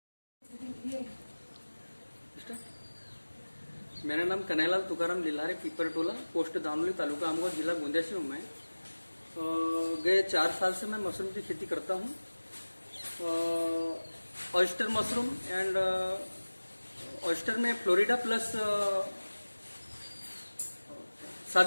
मेरा नाम कन्हैयालाल तुकाराम लिल्हारे, पिपरटोला, पोस्ट दामोली, तालुका आमगांव, जिला गोंदिया से हूँ मैं। गए 4 साल से मैं मशरूम की खेती करता हूँ। ऑयस्टर मशरूम एंड ऑयस्टर में फ्लोरिडा प्लस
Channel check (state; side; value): inverted; both; correlation -1.00